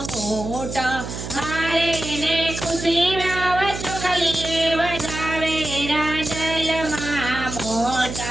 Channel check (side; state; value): right; noise; hum, 8 dB below the sound